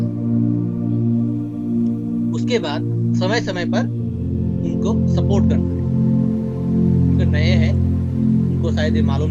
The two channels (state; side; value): identical; both; correlation 1.00